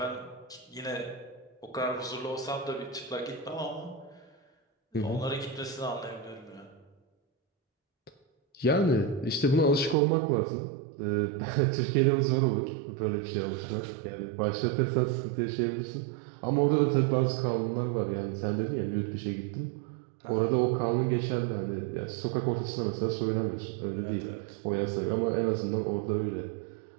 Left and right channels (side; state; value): left; drops out; at 10.0 s